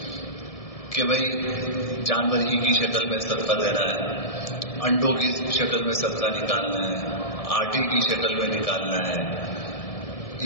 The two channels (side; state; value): right; late; 1.7 ms